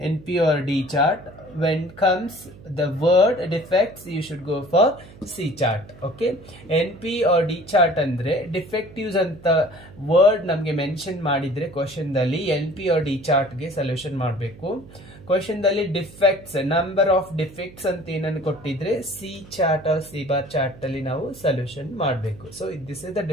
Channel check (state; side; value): noise; right; hum, 20 dB below the sound